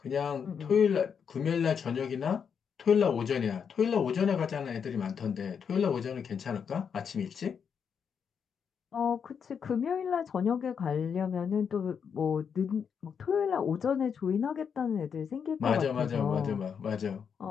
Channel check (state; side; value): quieter; right; 6.9 dB